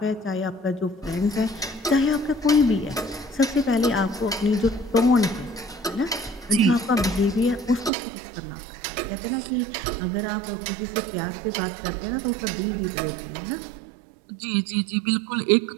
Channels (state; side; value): drops out; left; at 7.9 s